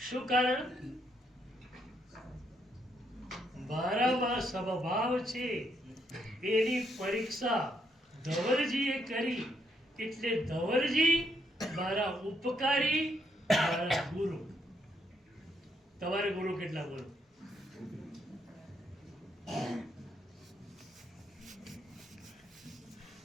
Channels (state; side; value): normal; both; correlation 0.75